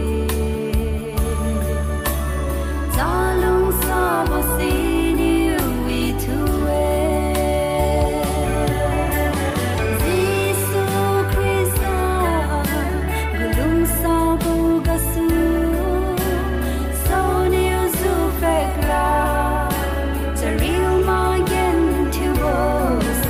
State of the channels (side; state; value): both; identical; correlation 1.00